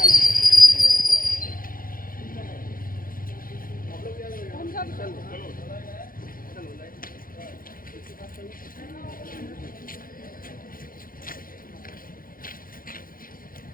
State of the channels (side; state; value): right; late; 0.41 ms